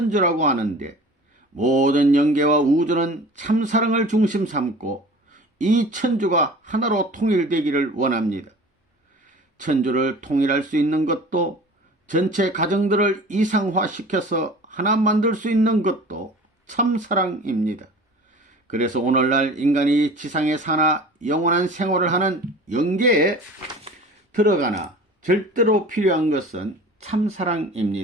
하는데 모든 영계와 우주는 참사랑을 중심 삼고 이 천주가 하나로 통일되기를 원합니다. 천주를 통일할 수 있는 것도 전체 가정들을 이상화시켜서 하나 만들 수 있는 것도 참사랑입니다. 그래서 오늘날 인간이 지상에 사나 영원한 생활을 하는 영계에 들어가나 절대로 필요한 것은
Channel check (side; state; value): both; normal; correlation 0.42